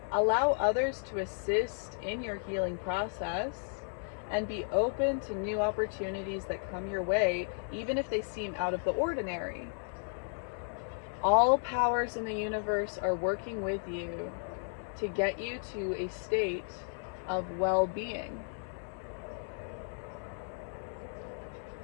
Allow others to assist in your healing process, and be open to new opportunities that come your way, even if they seem out of the ordinary. All powers in the universe are working with you to get you to a state of well-being.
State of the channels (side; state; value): right; silent; digital silence